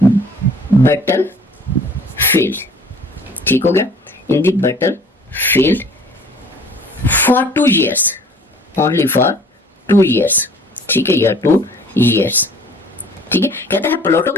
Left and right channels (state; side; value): normal; both; correlation 0.51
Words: ठीक हो गया, in the battlefield for 2 years, only for 2 years, ठीक है, या 2 years, ठीक है। कहता है प्लेटो